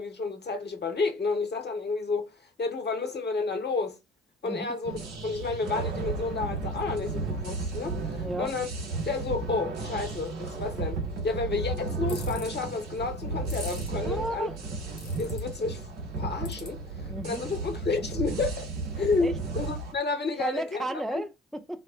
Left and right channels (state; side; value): normal; both; correlation 0.37